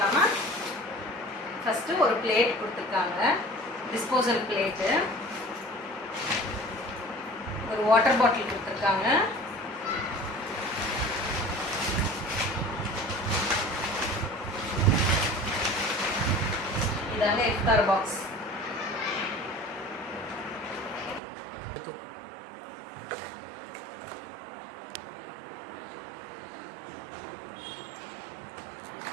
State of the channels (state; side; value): drops out; left; at 21.2 s